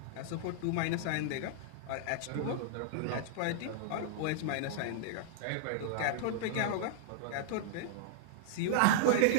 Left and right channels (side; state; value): both; different; correlation -0.01